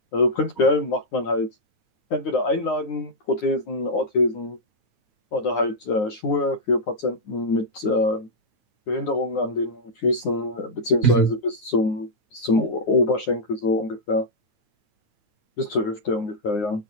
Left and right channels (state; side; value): late; right; 9.6 ms